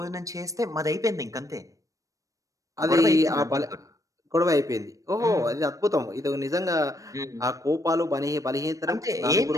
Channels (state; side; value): late; left; 0.16 ms